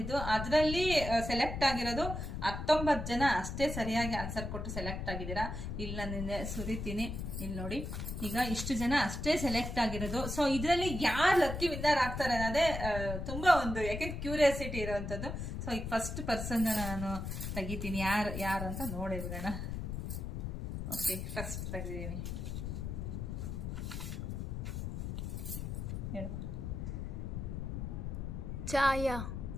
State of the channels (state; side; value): noise; left; rumble, 5 dB below the sound